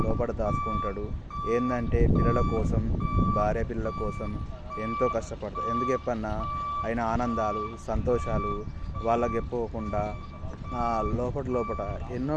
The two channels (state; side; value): identical; both; correlation 1.00